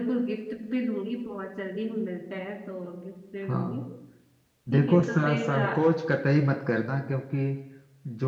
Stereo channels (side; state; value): both; identical; correlation 1.00